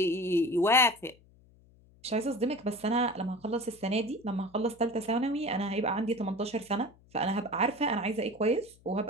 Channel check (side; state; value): left; noise; hum, 28 dB below the sound